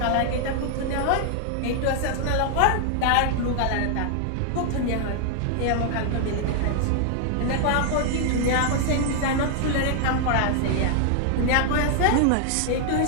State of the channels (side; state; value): both; different; correlation 0.00